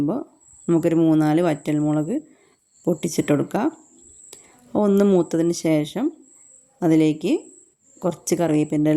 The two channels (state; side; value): identical; both; correlation 1.00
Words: നമുക്കൊരു 3-4 വറ്റൽമുളക് പൊട്ടിച്ചിട്ട് കൊടുക്കാം. ഒന്ന് മൂത്തതിന് ശേഷം അതിലേക്ക് കുറച്ച് കറിവേപ്പിൻ്റെ